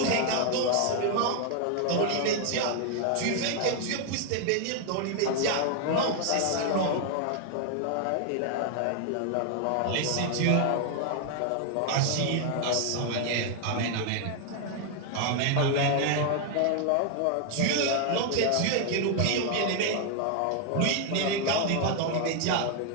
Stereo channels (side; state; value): both; different; correlation 0.00